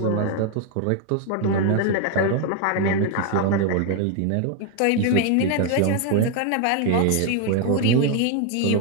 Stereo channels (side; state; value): both; different; correlation 0.01